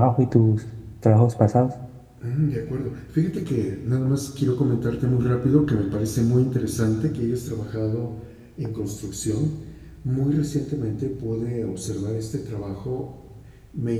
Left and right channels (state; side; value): identical; both; correlation 1.00